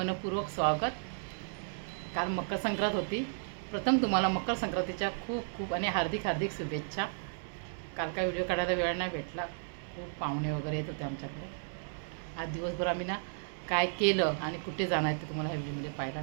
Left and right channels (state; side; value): silent; left; 55 dB below the other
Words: स्वागत. काल मकर संक्रांत होती. प्रथम तुम्हाला मकर संक्रांतीच्या खूप खूप आणि हार्दिक हार्दिक शुभेच्छा. काल काय व्हिडिओ काढायला वेळ नाही भेटला, खूप पाहुणे वगैरे येत होते आमच्याकडे. आज दिवसभर आम्ही ना काय केलं आणि कुठे जाणार आहे ते तुम्हाला ह्या व्हिडिओमध्ये पाहायला